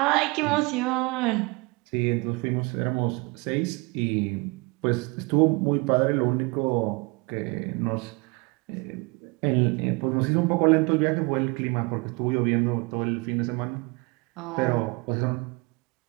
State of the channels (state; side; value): quieter; left; 27.4 dB